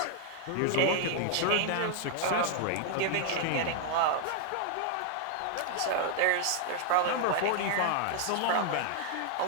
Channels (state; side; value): different; both; correlation -0.01